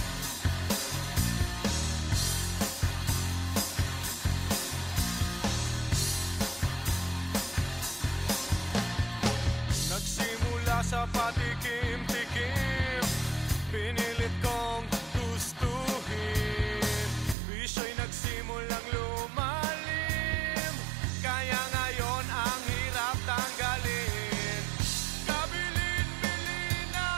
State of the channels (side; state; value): left; drops out; at 17.4 s